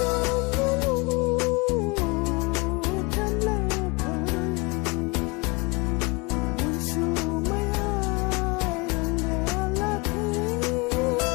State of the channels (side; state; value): right; quieter; 25.6 dB